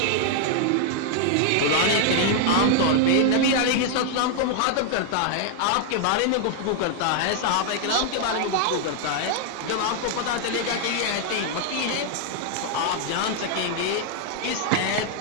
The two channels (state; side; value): different; both; correlation 0.00